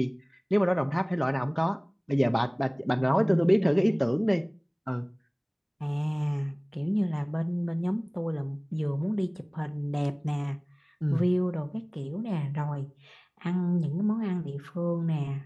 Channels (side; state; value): both; identical; correlation 1.00